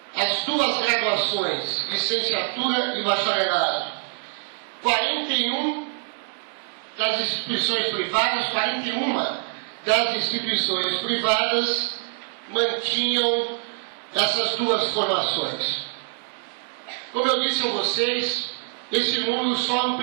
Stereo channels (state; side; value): silent; left; 62 dB below the other